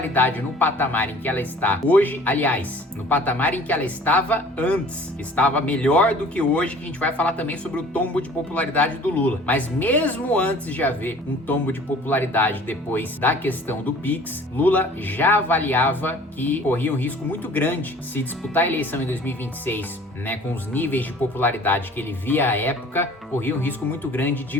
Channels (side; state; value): both; normal; correlation 0.49